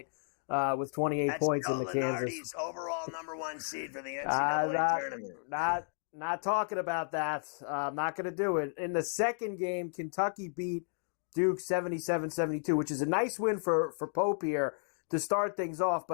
with 28 points in the Kansas. Overall number 1 seed for the NCAA tournament. Not talking about that. I'm not going to do it. In the second game, Kentucky beat Duke 77-72, which is a nice win for Pope here to start things off.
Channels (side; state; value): right; silent; digital silence